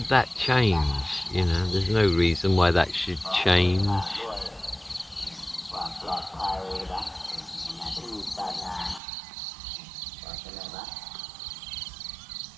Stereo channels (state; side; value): drops out; left; at 9.0 s